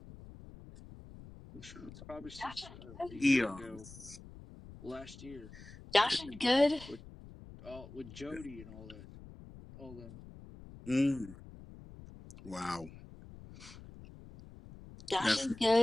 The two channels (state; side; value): noise; left; rumble, 17 dB below the sound